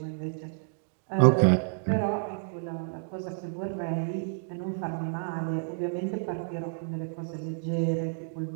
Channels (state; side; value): silent; left; digital silence